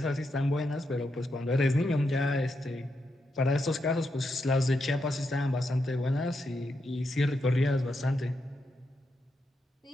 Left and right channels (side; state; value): both; normal; correlation 0.84